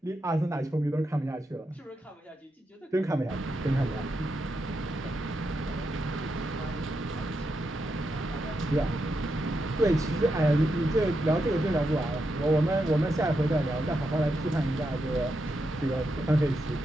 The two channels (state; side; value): normal; both; correlation 0.84